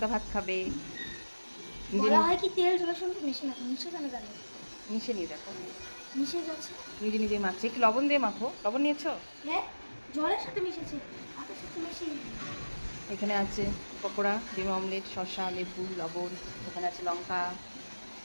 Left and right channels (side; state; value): both; inverted; correlation -1.00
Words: ভাত খাবে। নিজে বলা হয় কি তেল জলের সঙ্গে মিশে না, মিশে কেন গেল? মিশে নিয়ে দেখো, মিশে গেছে। নিজে নিজে মাখছে। একটু লবণ দিয়ে মাখো। লবণ নিয়েছো? হ্যাঁ, জলের সাথে মিশেছে, ভাতের সাথে মিশিয়ে। এখানে আছে পকোড়া, ডিম অমলেট, শসা, লেবু, লবণ। ওখানে আছে লঙ্কা,